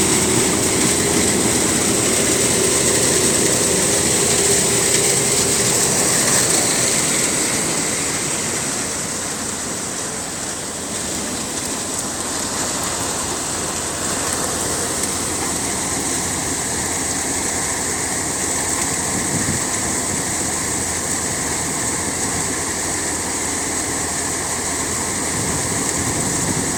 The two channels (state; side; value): identical; both; correlation 1.00